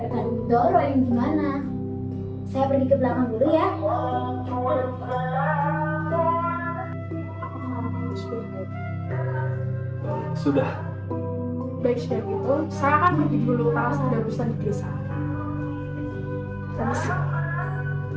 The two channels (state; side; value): identical; both; correlation 1.00